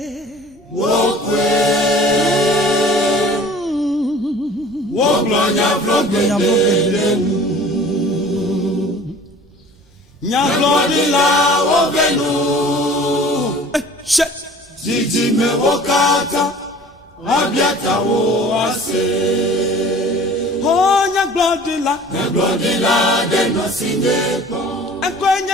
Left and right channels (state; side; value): normal; both; correlation 0.46